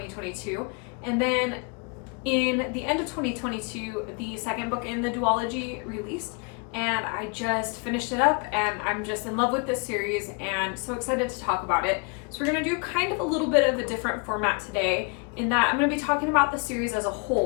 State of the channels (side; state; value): right; quieter; 33.8 dB